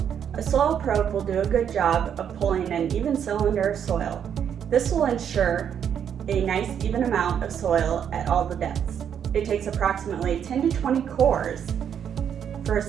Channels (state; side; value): quieter; left; 8.5 dB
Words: A soil probe will do a good job of pulling an even cylinder of soil. This will ensure a nice even amount of soil at all the depths. It takes approximately 10 to 20 cores for a